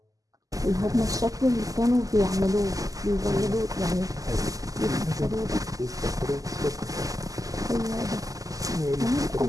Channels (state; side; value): late; left; 0.17 ms